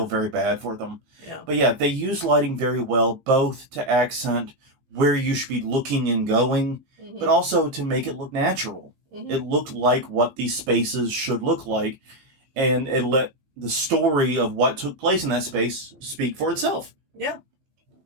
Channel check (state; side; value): late; left; 15 ms